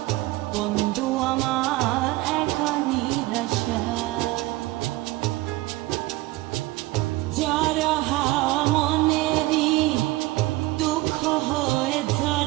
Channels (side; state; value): left; quieter; 19.5 dB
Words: বন্ধু আমার একা নিরাশা যারা হাওয়া মনেরই দুঃখ হয়ে